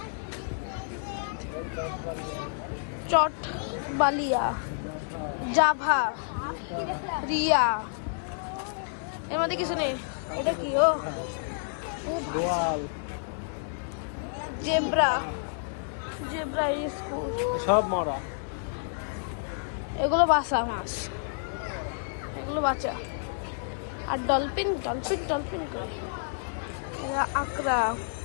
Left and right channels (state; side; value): silent; right; 58 dB below the other